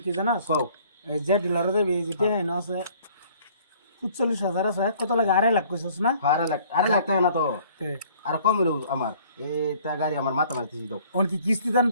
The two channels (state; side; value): inverted; both; correlation -0.56